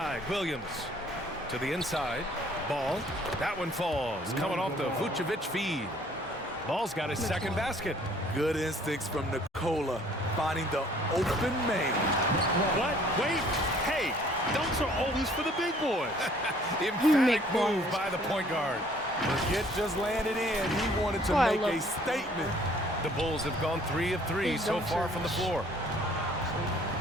Williams. To the inside. Ball. That one falls. Coming off the Vucevic feed. Ball's got his second basket. Good instincts from Nikola, finding the open man. What? Wait. Hey, dunks are always for the big boys. Emphatic Make move balls. by the point guard. The hit just landed in. He wanted to Oh, I make love a it. statement. The Bulls have gone 3 of 3 His so dunks far are from the floor.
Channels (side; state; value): both; normal; correlation 0.58